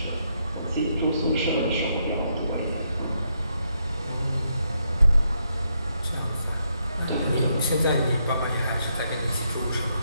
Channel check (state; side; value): inverted; both; correlation -0.78